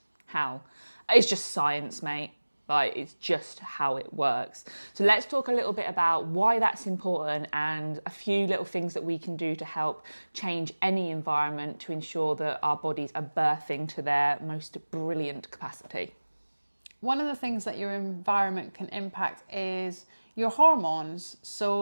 how? It's just science, mate. Like, it's just how it works. So let's talk a little bit about why that's important and a few little things that we can do to help change any environment to ensure that our bodies are birthing to their most brilliant capacity. One of the things that your environment can impact is your hormones.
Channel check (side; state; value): both; inverted; correlation -1.00